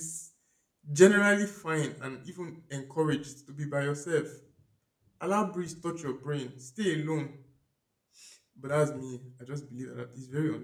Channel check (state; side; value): identical; both; correlation 1.00